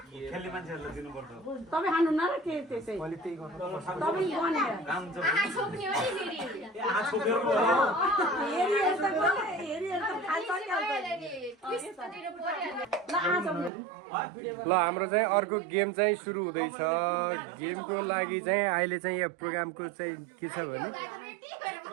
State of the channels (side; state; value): left; drops out; at 13.7 s